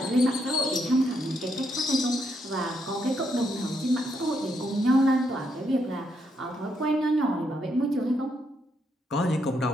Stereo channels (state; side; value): normal; both; correlation 0.77